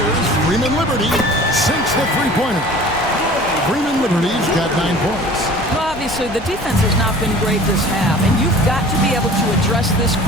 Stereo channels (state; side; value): normal; both; correlation 0.44